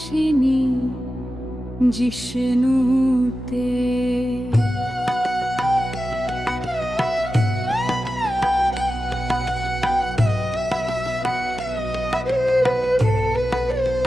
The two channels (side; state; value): both; normal; correlation 0.92